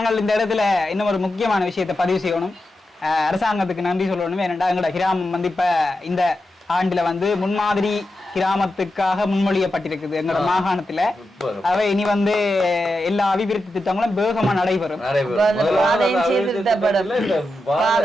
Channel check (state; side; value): normal; both; correlation 0.89